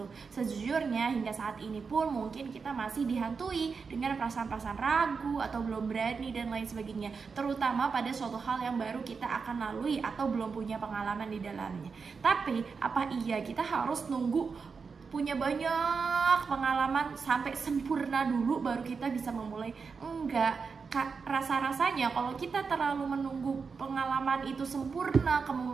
Sejujurnya hingga saat ini pun mungkin kita masih dihantui dengan perasaan-perasaan ragu atau belum berani dan lain sebagainya, terutama pada suatu hal yang baru kita akan lalui atau belum punya pengalaman di dalamnya. Tapi apa iya kita harus nunggu punya banyak pengalaman sampai sempurna dulu baru kita bisa memulai? Enggak. Rasa-rasanya kalau kita terlalu menunggu pengalaman itu sempurna,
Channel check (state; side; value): quieter; left; 5.2 dB